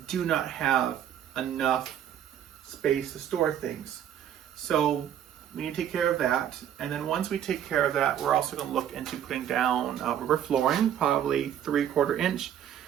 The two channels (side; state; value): left; quieter; 10.1 dB